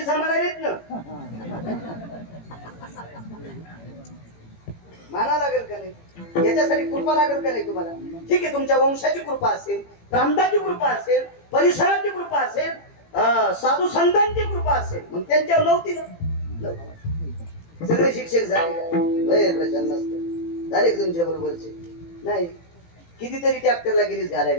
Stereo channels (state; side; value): late; right; 18 ms